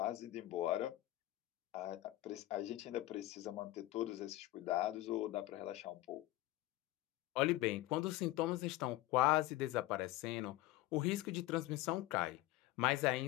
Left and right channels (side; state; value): right; quieter; 16.6 dB